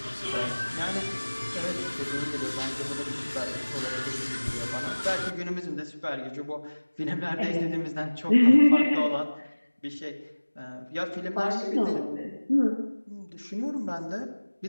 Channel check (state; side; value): inverted; both; correlation -1.00